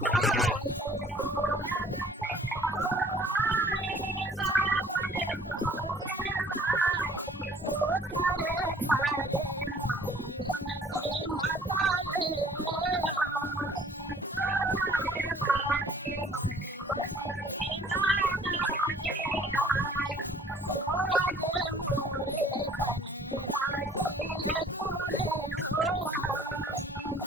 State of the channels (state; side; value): normal; both; correlation 0.55